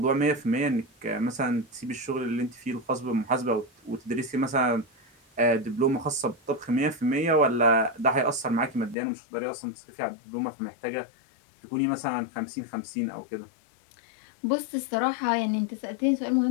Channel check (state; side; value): drops out; right; at 9.0 s